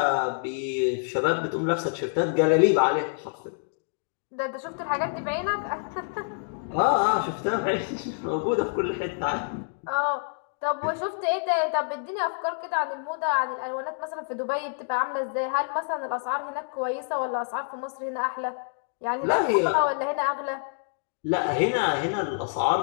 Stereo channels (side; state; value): right; silent; digital silence